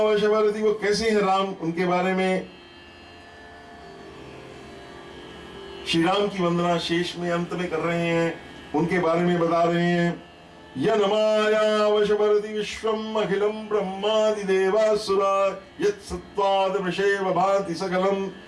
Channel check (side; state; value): both; identical; correlation 1.00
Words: वशवर्ती, वो कैसे हैं राम, उनके बारे में श्री राम की वंदना शेष में अंत में कर रहे हैं, उनके बारे में बता रहे हैं। यनमाया वशवर्ती विश्वम अखिलम ब्रह्मादि देवासुरा, यत् सत्त्वाद वृषेव भाति सकलम,